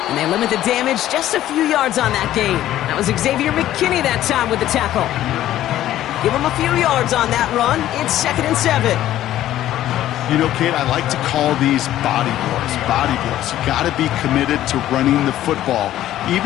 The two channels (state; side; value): quieter; right; 13.2 dB